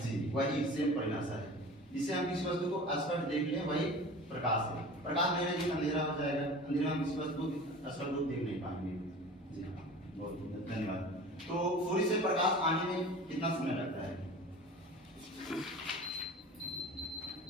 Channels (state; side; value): normal; both; correlation 0.38